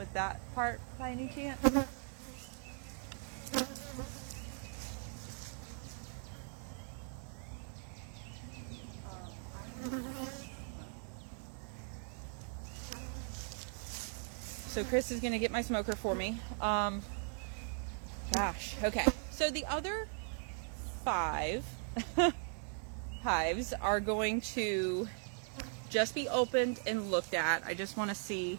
that part by any chance? So Chris is going to get my smoker for me. Gosh, okay. So the other 5 hives are going to just be opened and looked at. I just want to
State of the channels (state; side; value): silent; left; 52 dB below the other